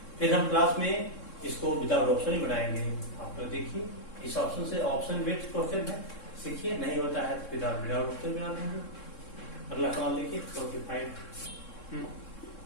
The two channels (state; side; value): late; right; 3.7 ms